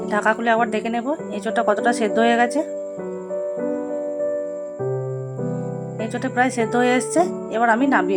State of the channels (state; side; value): identical; both; correlation 1.00